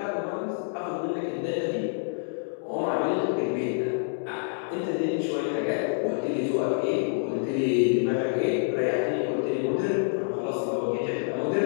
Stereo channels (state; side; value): silent; right; digital silence